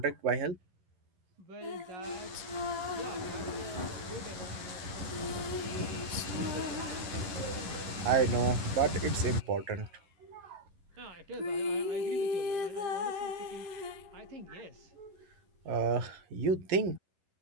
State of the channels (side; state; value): left; late; 11 ms